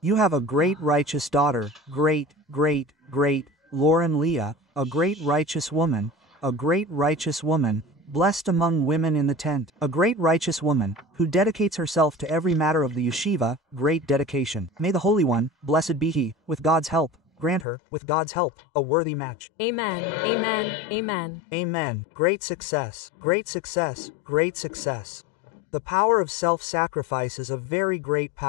You have a great righteous daughter, great, Lauren Leah, a great righteous woman, blessed among women in the tent, a great righteous woman, who dedicates herself to every matter of the yeshiva, great dedication. May the Holy One, blessed be He, with God's help, grant her, with God's help, a worthy match. Amen, amen, amen. Amen. Great success, great success, great success. The power of self-sacrifice is a very great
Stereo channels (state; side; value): drops out; right; at 17.7 s